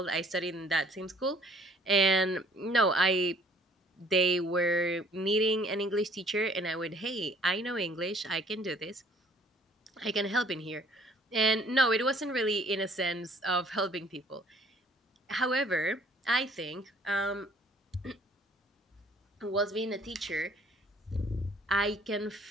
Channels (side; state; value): both; normal; correlation 0.58